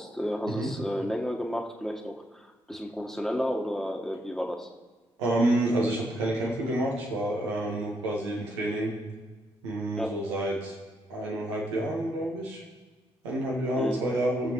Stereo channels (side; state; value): both; normal; correlation 0.77